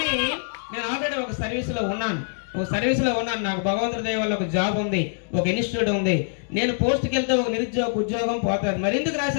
నేను ఆల్రెడీ ఒక సర్వీస్లో ఉన్నాను. నాకు భగవంతుడి దయ వల్ల ఒక జాబ్ ఉంది, ఒక ఇన్స్టిట్యూట్ ఉంది. నేను పోస్ట్కి వెళ్తే ఒక నిరుద్యోగ ఉద్యోగం పోతుంది. మరి ఎందుకు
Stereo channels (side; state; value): right; silent; digital silence